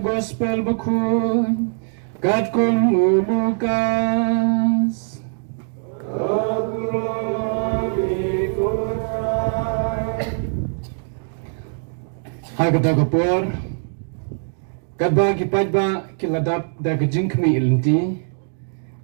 gospel bakun, kat kung ulukas. Hagda kapor, kadba kipajba kiladap da kajing kmi ilenti.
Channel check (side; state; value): left; silent; 61 dB below the other